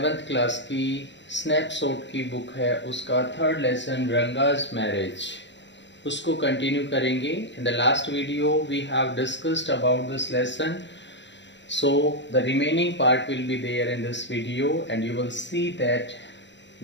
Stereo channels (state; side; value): late; right; 0.52 ms